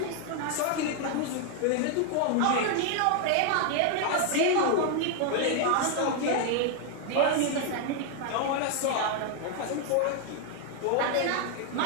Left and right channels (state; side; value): different; both; correlation 0.00